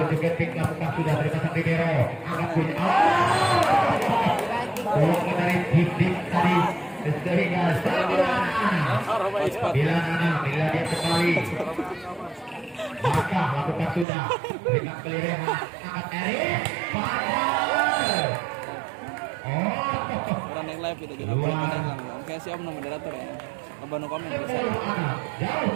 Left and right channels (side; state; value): left; drops out; at 14.1 s